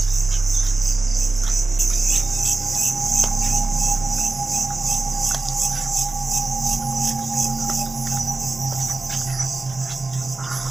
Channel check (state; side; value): quieter; left; 3.5 dB